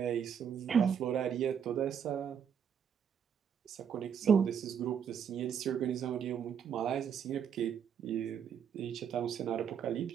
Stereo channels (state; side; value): quieter; left; 7.8 dB